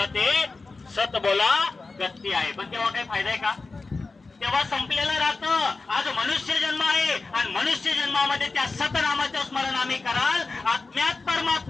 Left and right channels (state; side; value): quieter; right; 3.8 dB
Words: आहे, सत बोला गती आहे. पण तेव्हा काही फायदा आहे का? तेव्हा संपलेलं राहतं. आज मनुष्य जन्म आहे आणि मनुष्य जन्मामध्ये त्या सतनामाचं स्मरण आम्ही कराल. आत्म्यात